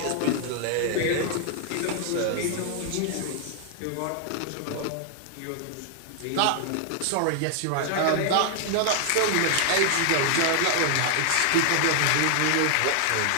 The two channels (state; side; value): different; both; correlation 0.00